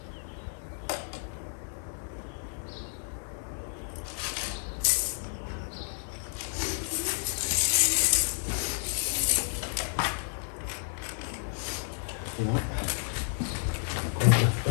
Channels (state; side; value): silent; right; 57 dB below the other